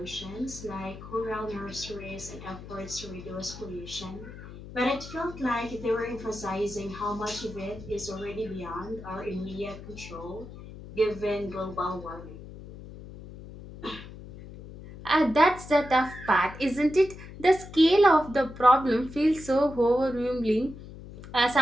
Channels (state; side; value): noise; left; hum, 14 dB below the sound